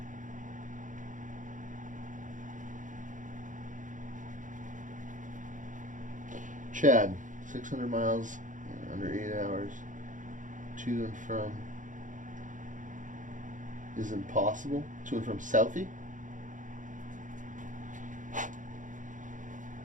Chad, 600 miles in under 8 hours to and from is impossible. To and from Southie?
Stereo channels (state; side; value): late; left; 0.37 ms